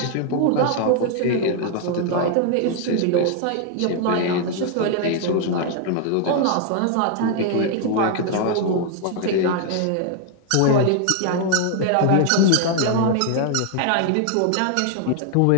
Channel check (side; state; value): both; different; correlation 0.00